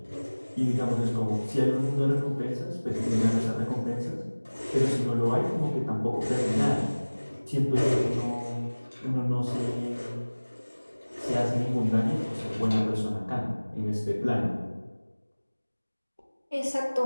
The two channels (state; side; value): inverted; both; correlation -1.00